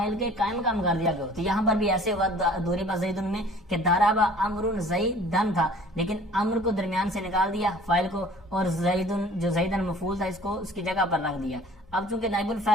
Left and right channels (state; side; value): normal; both; correlation 0.49